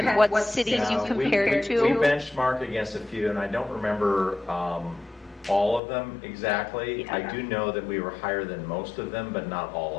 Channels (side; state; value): right; drops out; at 5.8 s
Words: what cities you compared to? We benchmarked against a few, and I don't remember all of them exactly. I do know that we were higher than most of them, but not